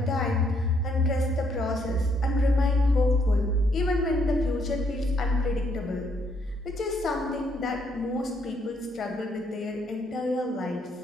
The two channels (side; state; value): both; normal; correlation 0.71